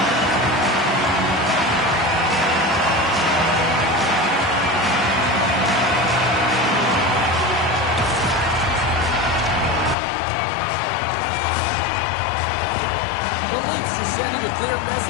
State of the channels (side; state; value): right; drops out; at 10.0 s